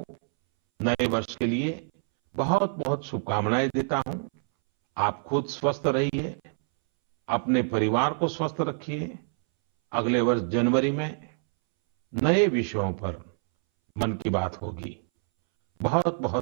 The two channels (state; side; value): silent; left; 61 dB below the other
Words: नए वर्ष के लिए बहुत बहुत शुभकामनाएं देता हूं। आप खुद स्वस्थ रहिए, अपने परिवार को स्वस्थ रखिए। अगले वर्ष जनवरी में नए विषयों पर मन की बात होगी। बहुत